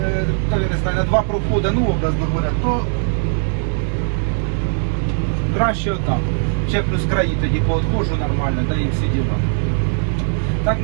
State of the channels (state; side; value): silent; left; digital silence